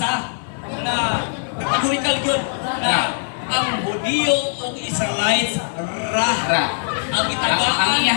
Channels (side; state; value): right; silent; 57 dB below the other